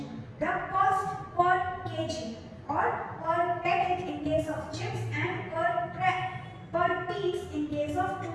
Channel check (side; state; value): both; identical; correlation 1.00